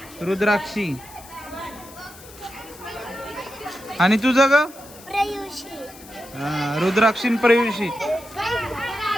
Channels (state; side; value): noise; left; hiss, 19 dB below the sound